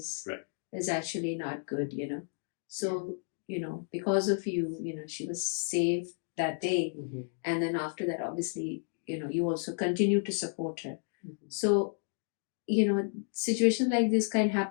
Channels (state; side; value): silent; right; 56 dB below the other